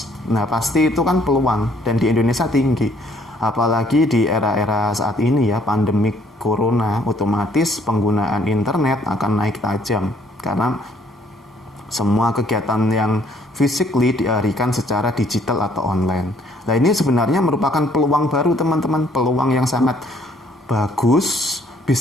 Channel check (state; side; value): normal; both; correlation 0.64